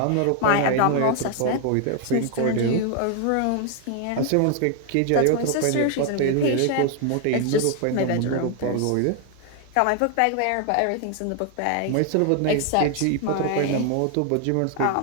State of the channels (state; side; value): different; both; correlation 0.00